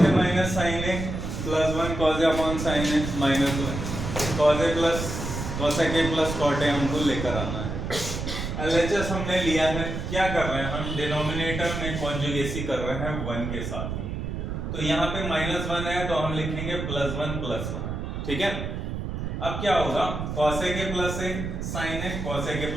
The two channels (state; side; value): noise; right; rumble, 4 dB below the sound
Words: A minus sine A plus 1 cos A upon sine A minus 1 cos A plus cosec A plus cot A हमको लेकर आना है। LHS हमने लिया है, क्या कर रहे हैं हम, डिनोमिनेटर में कॉन्जुगेसी कर रहे हैं 1 के साथ में। तो यहाँ पे -1 है तो हम लिखेंगे +1 +1, ठीक है। अब क्या होगा, cosec A plus A sine A, cosec A